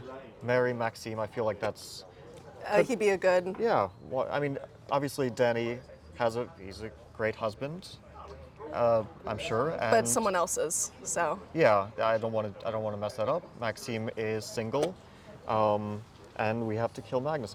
marry Maxime. I feel like that's He'd be a good. yeah. Well, I mean, obviously Danny he's a great husband. I'm sure. And But someone else's, so. yeah, I don't want to mess that up. Maxime is single, and we have to kill Magnus.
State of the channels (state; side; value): identical; both; correlation 1.00